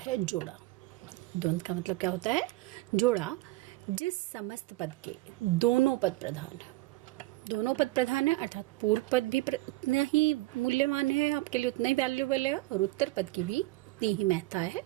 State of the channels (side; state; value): left; quieter; 19.2 dB